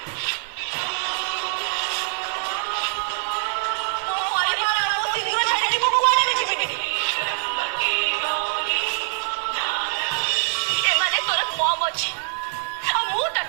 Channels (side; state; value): left; silent; digital silence